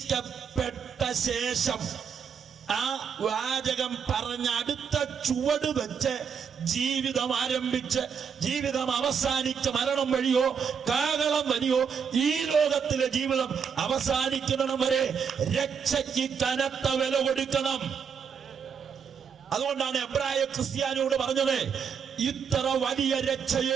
ശേഷം ആ വാചകം പറഞ്ഞ അടുത്ത ചുവട് വെച്ച് ജീവിതം ആരംഭിച്ച് ജീവിതം അവസാനിച്ച് മരണം വഴിയോ കാഹളം വഴിയോ ഈ ലോകത്തിലെ ജീവിതം അവസാനിക്കണം വരെ രക്ഷയ്ക്ക് കനത്ത വില കൊടുക്കണം. അതുകൊണ്ടാണ് എബ്രായ ക്രിസ്ത്യാനിയോട് പറഞ്ഞത്, ഇത്ര വലിയ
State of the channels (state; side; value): quieter; left; 6.8 dB